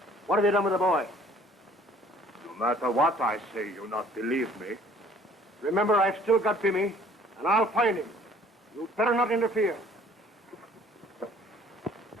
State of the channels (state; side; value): normal; both; correlation 0.55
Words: What have you done with the boy? No matter what I say, you'll not believe me. Remember, I've still got Bimmy, and I'll find him. You'd better not interfere.